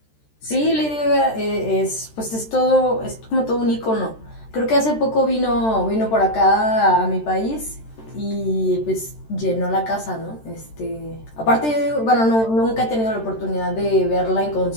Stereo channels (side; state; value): right; late; 13 ms